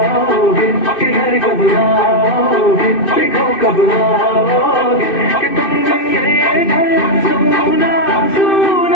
कि घर कब आओगे, देखो कब आओगे, कि तुम ये घर सुना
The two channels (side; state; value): right; late; 2.6 ms